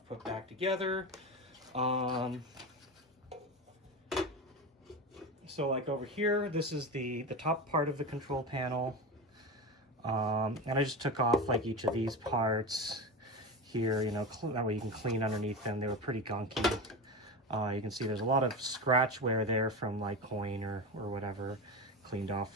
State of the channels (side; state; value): both; normal; correlation 0.23